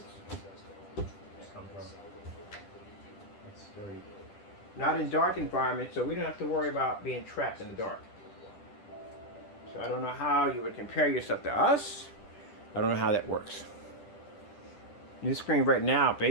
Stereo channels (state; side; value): late; right; 10 ms